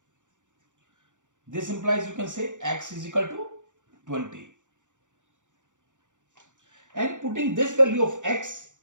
This implies you can say x is equal to 20. And putting this value of x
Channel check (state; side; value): late; left; 0.86 ms